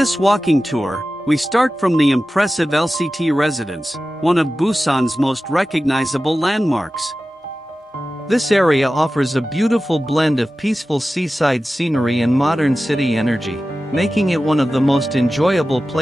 walking tour, we start from the impressive LCT Residence, one of Busan's most recognizable landmarks. This area offers a beautiful blend of peaceful seaside scenery and modern city energy, making it one of the most enjoyable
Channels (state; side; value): normal; both; correlation 0.95